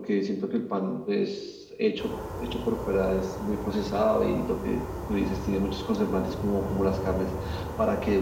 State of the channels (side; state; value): both; identical; correlation 1.00